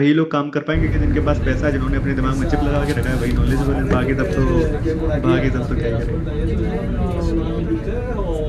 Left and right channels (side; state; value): both; identical; correlation 1.00